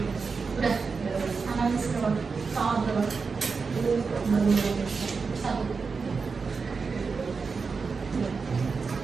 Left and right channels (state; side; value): quieter; left; 4.9 dB